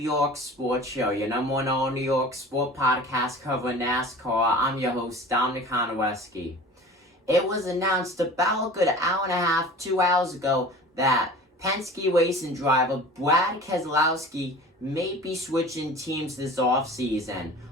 Sports Show, your number one all New York sport podcast covering NASCAR. I'm your host, Dominic Keselowski. It was announced about a good hour and a half, 2 hours ago, that Penske racing driver Brad Keselowski may be switching teams this offseason,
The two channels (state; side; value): normal; both; correlation 0.40